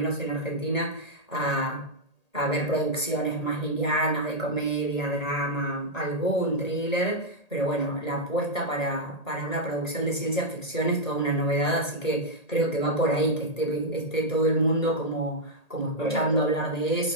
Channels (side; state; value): right; late; 1.8 ms